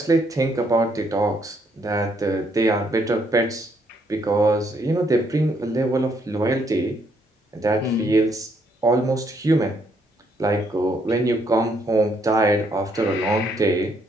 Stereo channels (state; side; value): normal; both; correlation 0.71